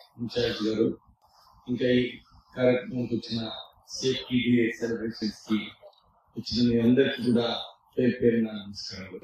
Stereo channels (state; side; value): identical; both; correlation 1.00